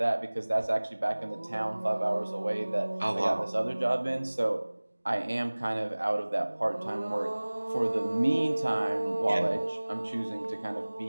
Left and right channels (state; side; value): inverted; both; correlation -1.00